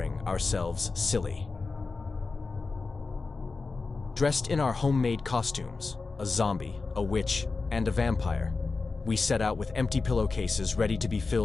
ourselves silly. Dressed in our homemade costumes, a zombie, a witch, and a vampire, we set out with empty pillowcases ready to be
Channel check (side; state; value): right; quieter; 4.1 dB